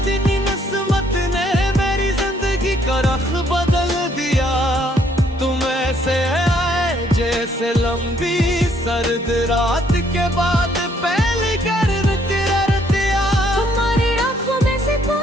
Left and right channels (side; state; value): both; normal; correlation 0.67